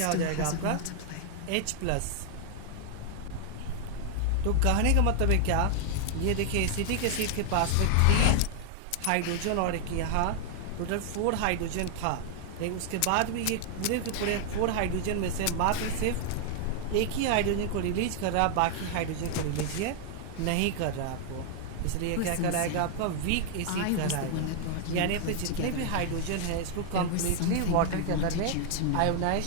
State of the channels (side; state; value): both; different; correlation 0.00